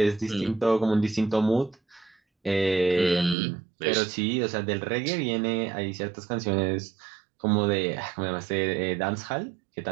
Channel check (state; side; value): drops out; left; at 3.4 s